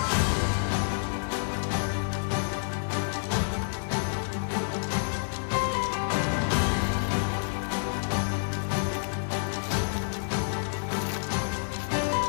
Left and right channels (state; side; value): silent; right; 59 dB below the other